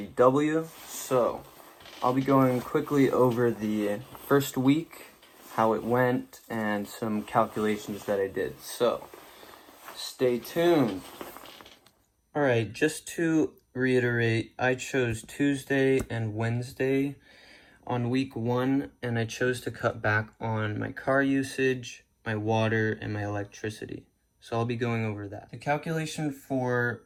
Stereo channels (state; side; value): identical; both; correlation 1.00